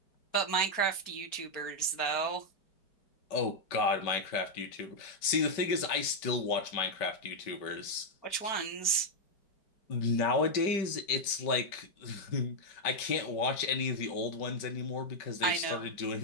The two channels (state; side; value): late; right; 5.1 ms